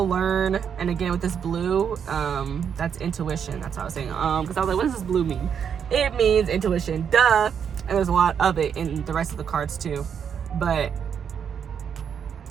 learn, and again with this blue, that's intuition. That's what I was saying. Because I was like, what does this blue mean? It means intuition. Duh. And there's a lot of it in the rest of the cards too. But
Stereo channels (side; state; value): left; quieter; 7.6 dB